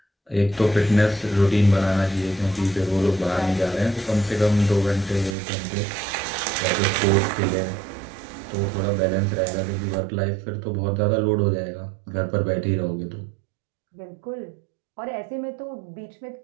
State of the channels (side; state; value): left; drops out; at 5.4 s